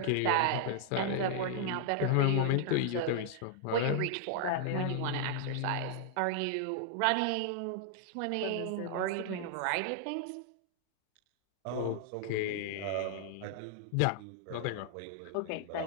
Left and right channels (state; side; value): different; both; correlation 0.00